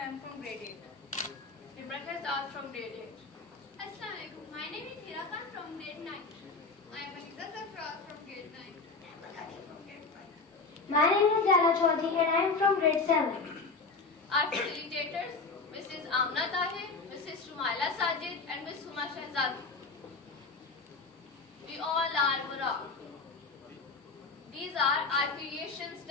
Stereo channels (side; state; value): right; quieter; 4.0 dB